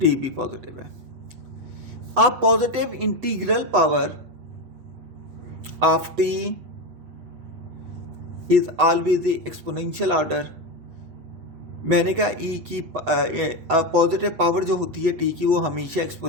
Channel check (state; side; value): late; left; 8.0 ms